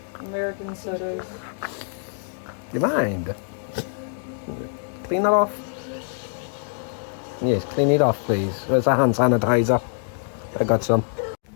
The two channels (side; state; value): right; silent; 62 dB below the other